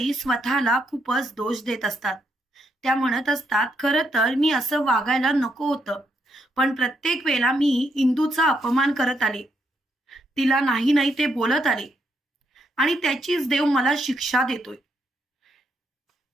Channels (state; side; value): normal; both; correlation 0.78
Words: स्वतःला खूपच दोष देत असतात. त्या म्हणत असतात, "खरं तर मी असं वागायला नको होतं. पण प्रत्येक वेळेला मी इंदूचा अपमान करत आले. तिला नाही नाही ते बोलत आले आणि त्याचीच देव मला शिक्षा देतोय."